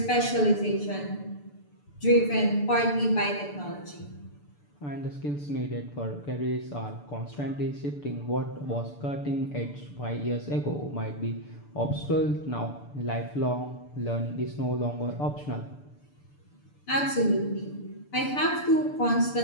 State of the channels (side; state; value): right; late; 6.9 ms